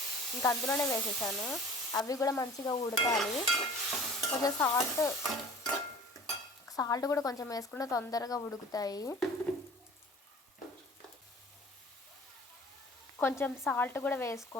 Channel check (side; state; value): both; normal; correlation 0.45